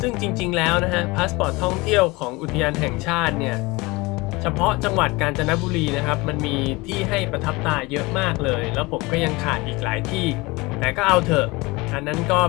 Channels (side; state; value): right; quieter; 23.5 dB